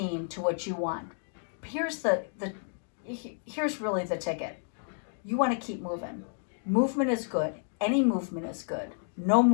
to what you want. Here's here's really the ticket. You want to keep moving. Movement is good. Any movement is good. No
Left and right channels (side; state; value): right; silent; digital silence